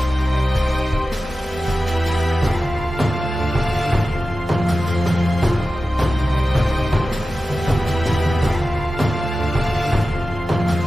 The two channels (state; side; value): normal; both; correlation 0.94